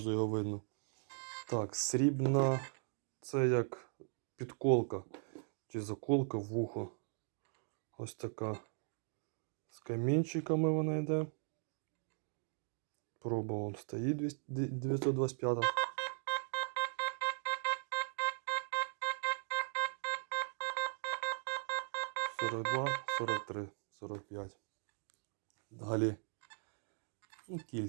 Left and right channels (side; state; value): left; silent; 52 dB below the other